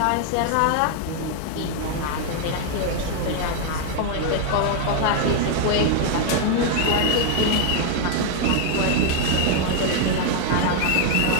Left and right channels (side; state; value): both; different; correlation 0.00